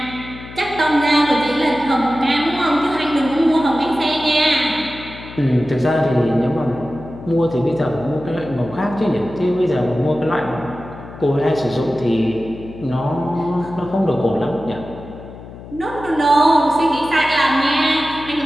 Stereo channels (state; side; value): noise; left; hum, 15 dB below the sound